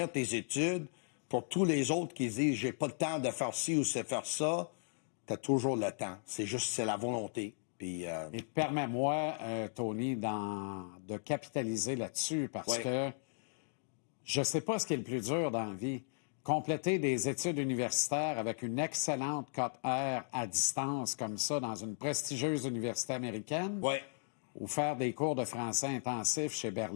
tes études, pour tous les autres qui disent « j'ai pas le temps de faire ci ou de faire ça », t'as toujours le temps. C'est la volonté. Puis, Et permets-moi, Tony, de capitaliser là-dessus parce que je sais pas ce qui est le plus dur dans la vie. Compléter des études universitaires avec une excellente cote R à distance comme ça dans une prestigieuse université américaine ou faire des cours de français intensifs chez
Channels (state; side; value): silent; right; digital silence